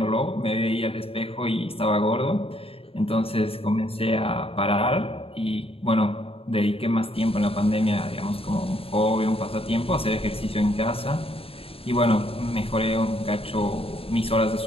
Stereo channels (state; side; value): late; right; 0.27 ms